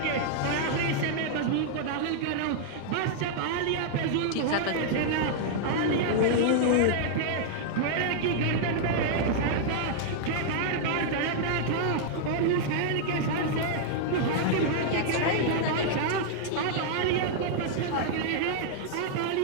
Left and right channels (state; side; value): different; both; correlation -0.01